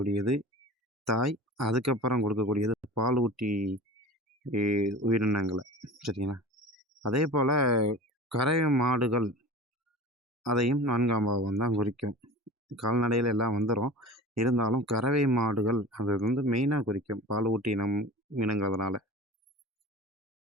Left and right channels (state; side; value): normal; both; correlation 0.37